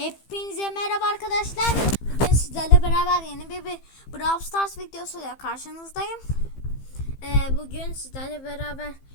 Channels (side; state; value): right; late; 15 ms